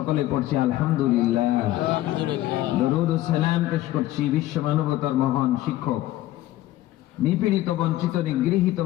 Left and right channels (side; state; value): right; quieter; 15.3 dB